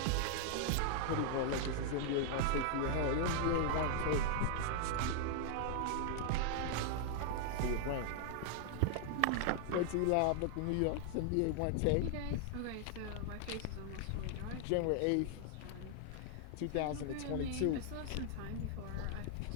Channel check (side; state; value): both; different; correlation 0.00